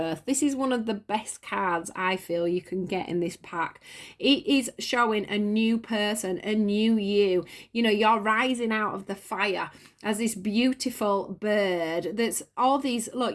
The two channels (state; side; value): identical; both; correlation 1.00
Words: This is one of the best cards I feel you can get in this pack. It is showing a new person, a new you. You're rising out of the fire as this beautiful bird that's all these,